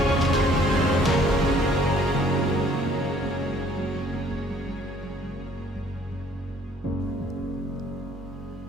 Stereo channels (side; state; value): both; normal; correlation 0.59